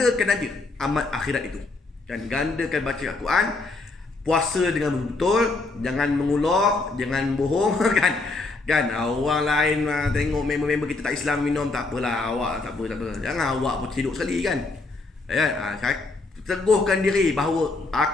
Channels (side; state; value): right; quieter; 3.5 dB